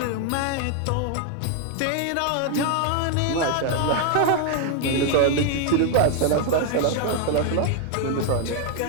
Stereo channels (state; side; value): different; both; correlation 0.00